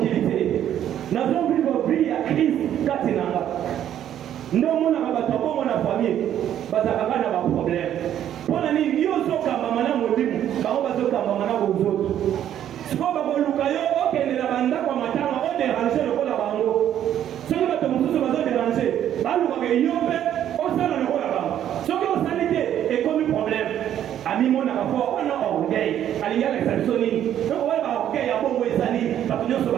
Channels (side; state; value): left; quieter; 10.7 dB